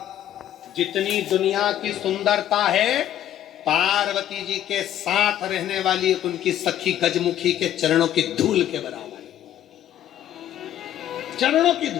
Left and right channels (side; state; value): right; quieter; 11.6 dB